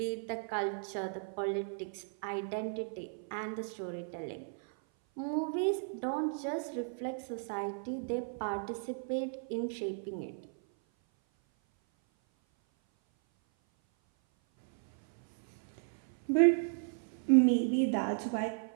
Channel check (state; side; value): silent; left; 55 dB below the other